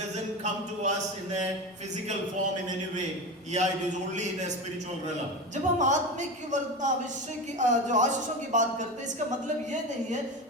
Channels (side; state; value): both; normal; correlation 0.23